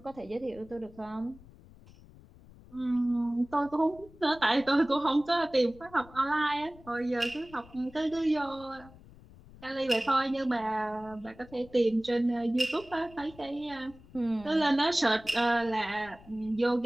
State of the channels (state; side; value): noise; left; rumble, 22 dB below the sound